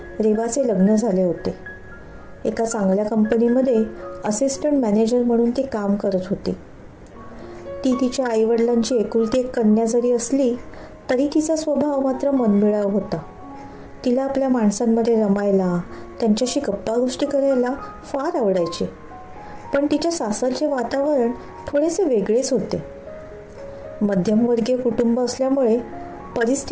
रेवाचे लग्न झाले होते. एका चांगल्या कंपनीमध्ये असिस्टंट मॅनेजर म्हणून ती काम करत होती. ती तिच्या आईवडिलांची एकुलती एक कन्या जरी असली तरी तिचा स्वभाव मात्र मनमिळाऊ होता. तिला आपल्या माणसांमध्ये रमायला, त्यांच्याशी गप्पा गोष्टी करायला फार आवडायचे. पण तिच्या सासरचे वातावरण थोडेसे वेगळेच होते. मध्यमवर्गीय कुटुंब असल्यामुळे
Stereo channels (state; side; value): identical; both; correlation 1.00